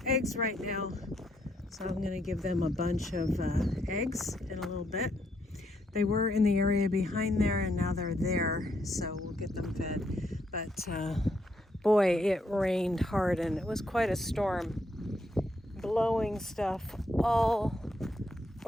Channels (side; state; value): both; normal; correlation 0.76